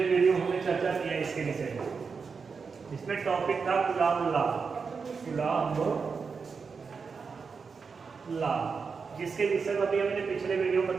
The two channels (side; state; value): left; quieter; 5.3 dB